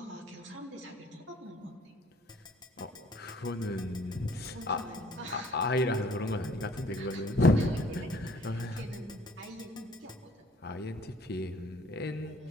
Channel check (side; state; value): both; normal; correlation 0.57